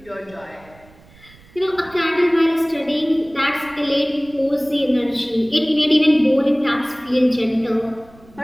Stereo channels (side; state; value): right; noise; rumble, 26 dB below the sound